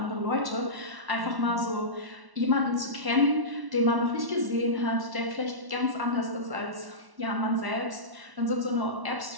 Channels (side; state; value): left; late; 1.1 ms